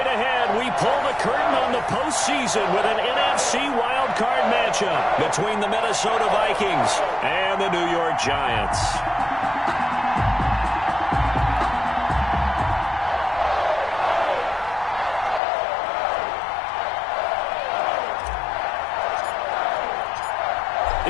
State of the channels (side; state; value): right; drops out; at 15.4 s